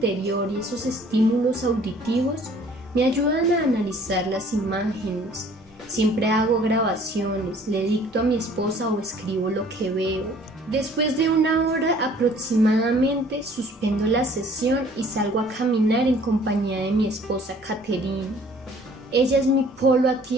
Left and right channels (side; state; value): both; normal; correlation 0.55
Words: y esos estímulos auditivos me ayudan a analizar las imágenes. Siempre hago grabaciones, le dicto a mi esposa o escribo lo que veo. Después de 1 hora aproximadamente suspendo la sesión y salgo a caminar en compañía de mi esposa Catherine. Ella es mi polo a